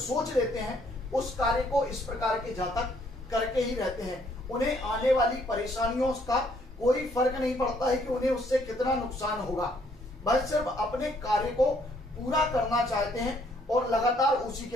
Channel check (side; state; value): both; normal; correlation 0.66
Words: लेते हैं उस कार्य को इस प्रकार के जातक करके ही रहते हैं। उन्हें आने वाली परेशानियों का कोई फर्क नहीं पड़ता है कि उन्हें उससे कितना नुकसान होगा, वह सिर्फ अपने कार्य को पूरा करना चाहते हैं और लगातार उसी